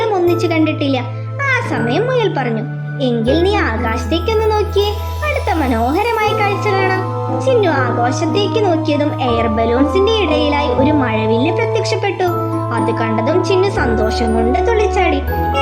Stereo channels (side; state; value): both; identical; correlation 1.00